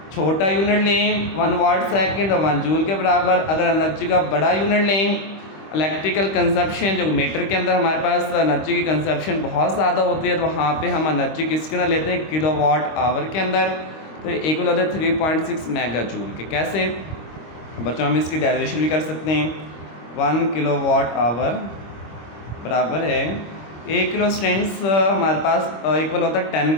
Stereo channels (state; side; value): late; right; 25 ms